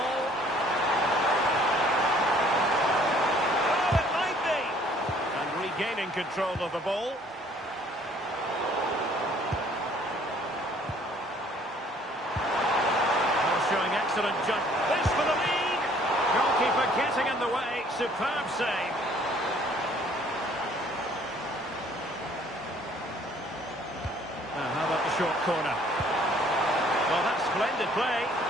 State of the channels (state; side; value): normal; both; correlation 0.58